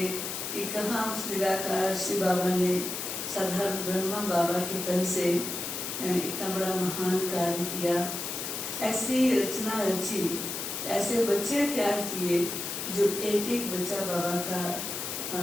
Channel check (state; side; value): noise; left; hiss, 5 dB below the sound